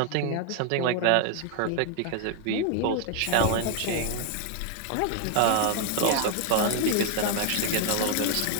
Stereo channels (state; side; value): different; both; correlation 0.01